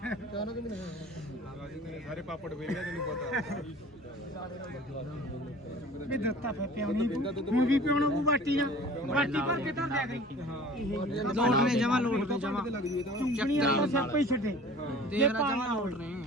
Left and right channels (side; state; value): both; normal; correlation 0.45